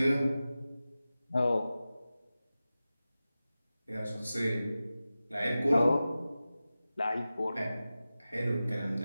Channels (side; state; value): both; inverted; correlation -0.95